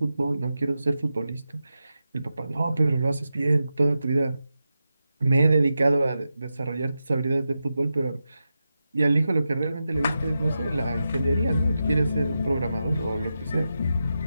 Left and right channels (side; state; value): both; inverted; correlation -0.90